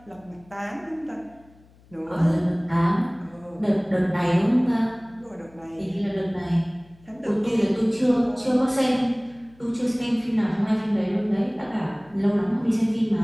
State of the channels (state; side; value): noise; left; hum, 28 dB below the sound